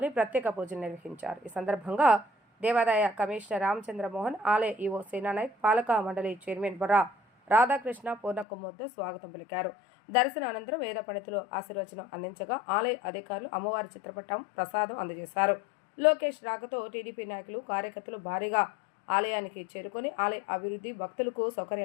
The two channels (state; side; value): drops out; right; at 8.5 s